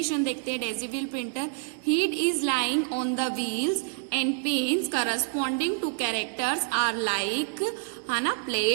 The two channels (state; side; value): silent; left; 60 dB below the other